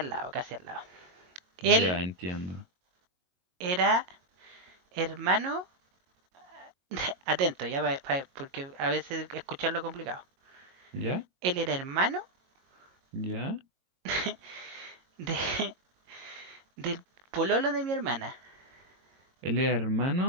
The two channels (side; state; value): left; late; 22 ms